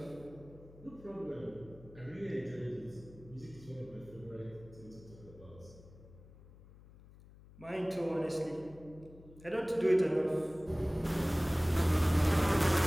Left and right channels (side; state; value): left; noise; hum, 21 dB below the sound